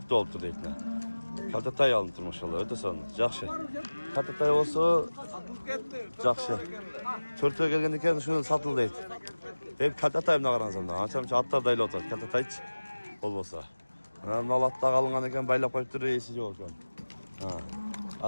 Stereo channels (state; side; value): inverted; both; correlation -1.00